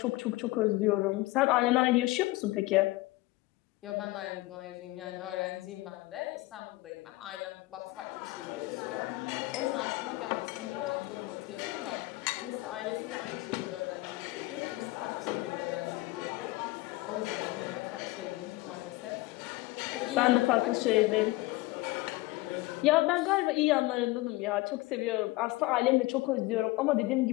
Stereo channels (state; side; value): quieter; right; 20.2 dB